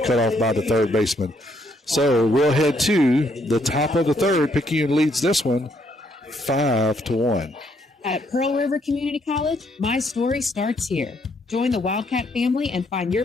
cutoff by the third baseman. So we'll head to the top of the third. Picayune leads this one 5-1. At Pearl River Community College, my story starts here. Join the Wildcat family and find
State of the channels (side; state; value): both; normal; correlation 0.71